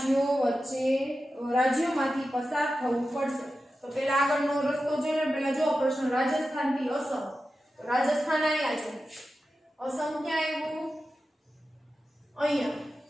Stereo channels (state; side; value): normal; both; correlation 0.92